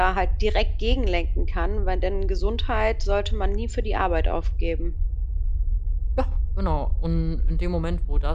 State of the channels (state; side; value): identical; both; correlation 1.00